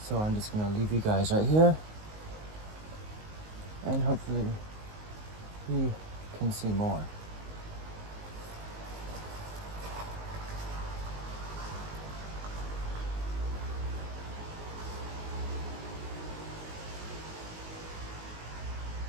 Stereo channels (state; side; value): late; left; 19 ms